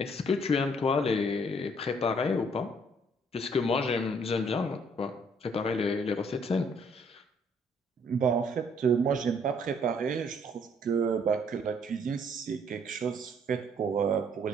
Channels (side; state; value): both; normal; correlation 0.64